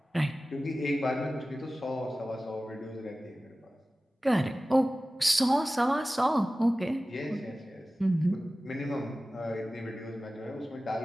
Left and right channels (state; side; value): normal; both; correlation 0.96